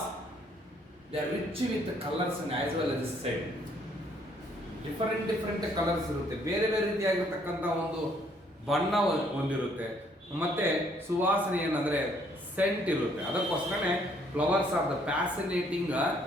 they are rich with the colors and as well as scent. Different colors ಇರುತ್ತೆ, ಬೇರೆ ರೀತಿಯಾಗಿರತಕ್ಕಂತ ಒಂದು ಬಣ್ಣ ಹೊಂದಿರುತ್ತೆ, ಮತ್ತೆ ಸುವಾಸನೆ ಏನಂದ್ರೆ ಸೆಂಟ್ ಇರುತ್ತೆ. ಅದಕ್ಕೋಸ್ಕರನೇ flowers are the fascinating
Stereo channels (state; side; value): normal; both; correlation 0.66